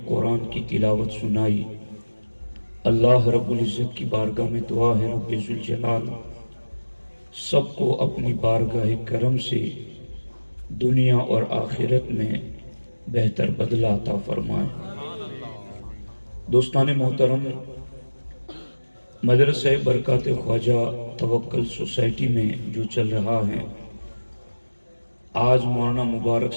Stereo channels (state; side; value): inverted; both; correlation -1.00